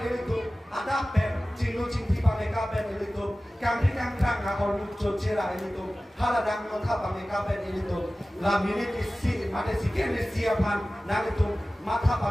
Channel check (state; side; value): normal; both; correlation 0.96